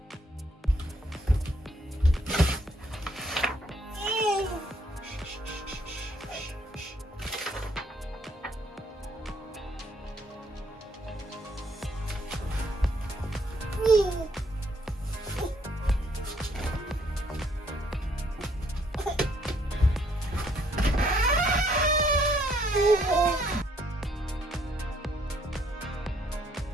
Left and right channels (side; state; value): both; normal; correlation 0.67